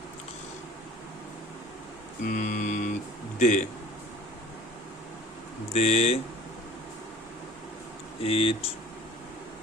দে দে ইট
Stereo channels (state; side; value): normal; both; correlation 0.46